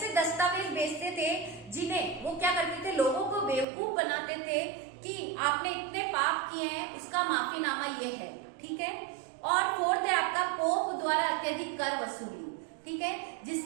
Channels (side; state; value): left; drops out; at 3.7 s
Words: दस्तावेज बेचते थे जिन्हें वो क्या करते थे, लोगों को बेवकूफ बनाते थे कि आपने इतने पाप किए हैं, उसका माफीनामा ये है, ठीक है। और फोर्थ है आपका पोप द्वारा अत्यधिक कर वसूली, ठीक है।